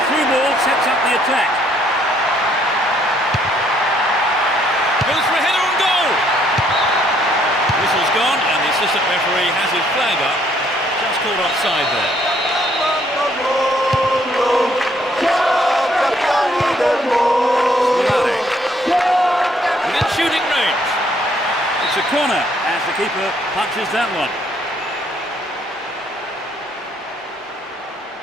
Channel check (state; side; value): normal; both; correlation 0.67